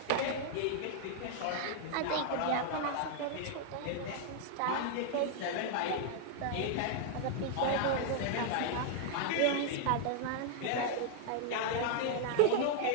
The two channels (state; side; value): different; both; correlation -0.01